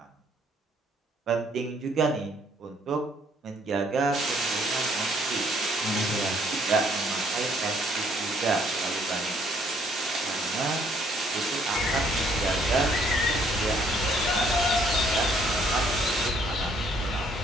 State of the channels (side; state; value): both; normal; correlation 0.65